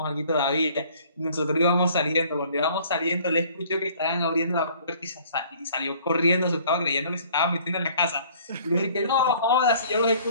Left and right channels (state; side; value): inverted; both; correlation -0.55